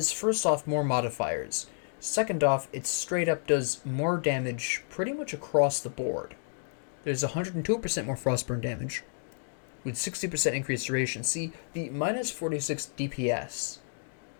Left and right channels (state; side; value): silent; right; digital silence